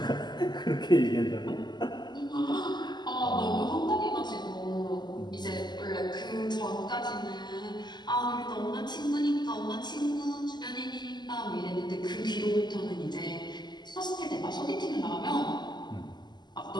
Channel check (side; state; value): right; late; 0.21 ms